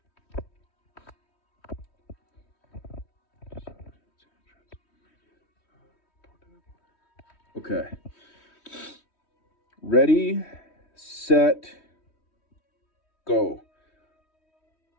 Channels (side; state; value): right; late; 3.1 ms